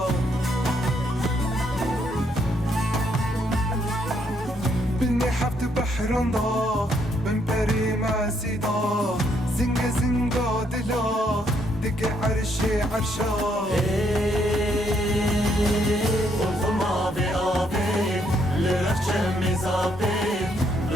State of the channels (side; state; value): both; normal; correlation 0.72